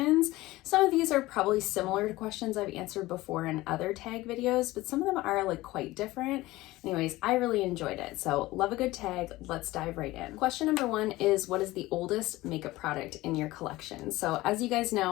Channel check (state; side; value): quieter; right; 18.5 dB